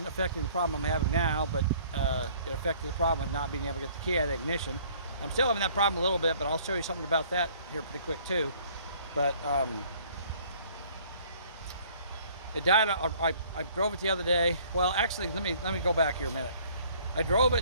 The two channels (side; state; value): both; inverted; correlation -0.56